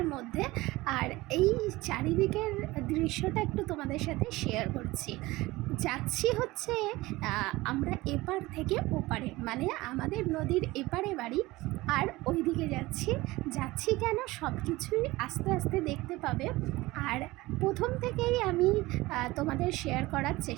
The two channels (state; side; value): quieter; left; 19.9 dB